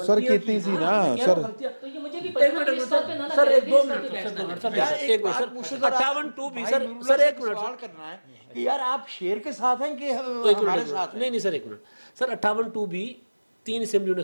सर, कितनी सी ना सर, तो ये मुझे भी सर एक 2 मिनट एक मिनट सर 58(2)B सर एक मिनट सवाल करना है कि यार आप शेर के साथ हैं कि हमारे साथ हैं? नहीं सर एक मिनट सर 58(2)B 3 असेंबलियों ने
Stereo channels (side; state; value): both; inverted; correlation -1.00